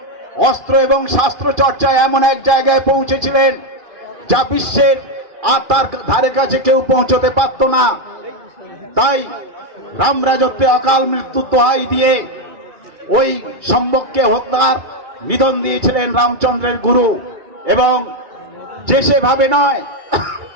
অস্ত্র এবং শাস্ত্র চর্চায় এমন এক জায়গায় পৌঁছেছিলেন যা বিশ্বের আর তার ধারে কাছে কেউ পৌঁছতে পারত না। তাই রাম রাজত্বে অকাল মৃত্যুর দোহাই দিয়ে ওই সম্ভবকে হত্যার নিধন দিয়েছিলেন রামচন্দ্রের গুরু। এবং যে সেভাবে নয়,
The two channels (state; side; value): late; left; 2.3 ms